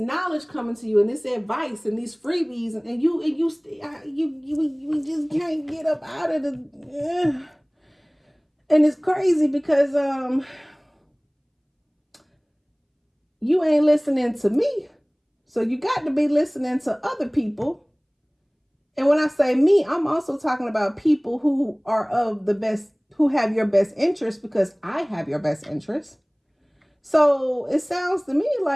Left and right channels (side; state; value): both; identical; correlation 1.00